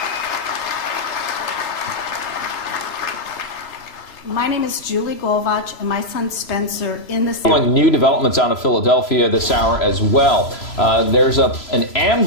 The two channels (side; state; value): right; late; 3.0 ms